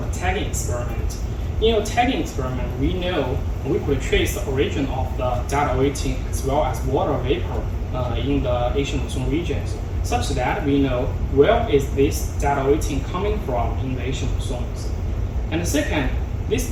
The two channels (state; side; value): identical; both; correlation 1.00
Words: tagging experiment. In a tagging experiment, we know we could trace the origin of the data weighting as well as water vapor in the Asian monsoon regions, such that we know where is this data weighting coming from in the Asian monsoons. And second,